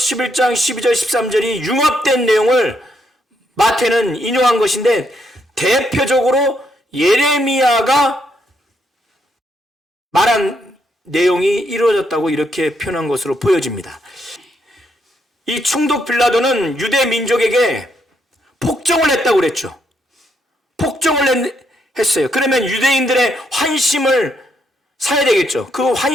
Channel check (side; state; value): both; normal; correlation 0.76